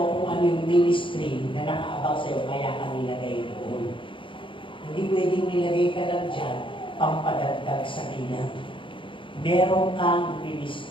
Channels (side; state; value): right; late; 0.25 ms